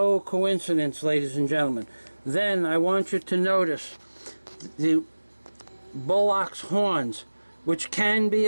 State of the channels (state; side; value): inverted; both; correlation -1.00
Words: coincidence, ladies and gentlemen. Then I want you to notice the bullock's horns, which can be